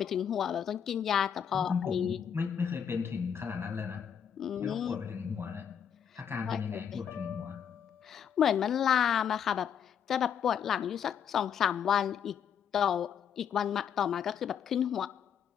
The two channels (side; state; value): right; quieter; 8.1 dB